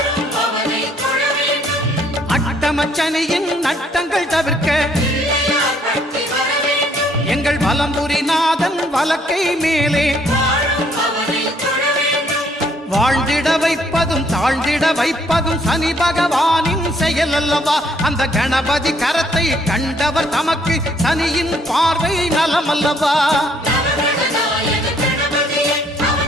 அட்டமச்சனியின் நட்டங்கள் தவிர்க்க எங்கள் வலம்புரிநாதன் வலக்கை மேலே வாழ்ந்திட வைப்பதும் தாழ்ந்திட வைப்பதும் சனி பகவானின் செயல் அல்லவா. அந்த கணபதி கரத்தை கண்டவர் தமக்கு சனியின் பார்வை நலம் அல்லவா.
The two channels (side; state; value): both; normal; correlation 0.66